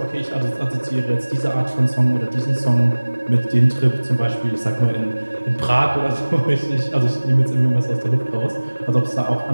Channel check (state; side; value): inverted; both; correlation -1.00